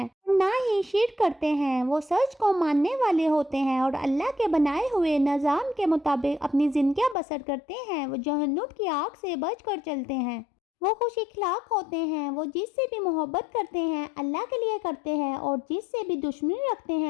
نہ ہی شرک کرتے ہیں۔ وہ سچ کو ماننے والے ہوتے ہیں اور اللہ کے بنائے ہوئے نظام کے مطابق اپنی زندگیاں بسر کرتے ہیں۔ وہ جہنم کی آگ سے بچ کر چلتے ہیں۔ وہ خوش اخلاق ہوتے ہیں، وہ جس سے بھی محبت کرتے ہیں اللہ کے لیے کرتے ہیں، اور جس سے بھی دشمنی رکھتے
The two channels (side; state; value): right; drops out; at 7.2 s